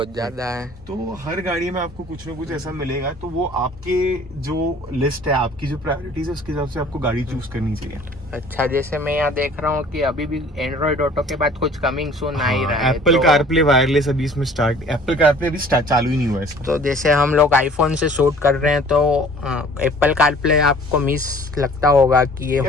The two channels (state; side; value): normal; both; correlation 0.51